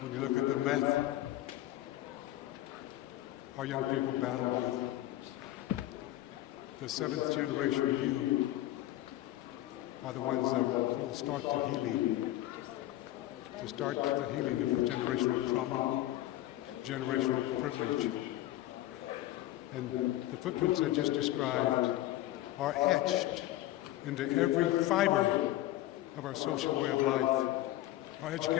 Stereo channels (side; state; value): right; quieter; 15.2 dB